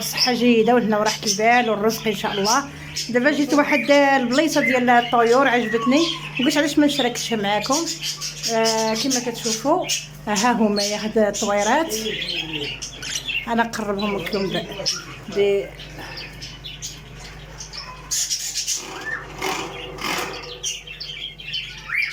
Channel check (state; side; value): identical; both; correlation 1.00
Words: جيده وهنا وراحه البال والرزق ان شاء الله. دابا جيت واحد البليصه ديال الطيور عجبتني وقلت علاش ما نشاركش معكم. كما كتشوفوا ها هما هاد الطويرات، انا نقربهم لكم